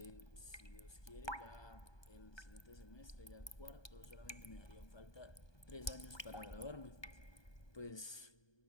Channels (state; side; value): late; right; 1.2 ms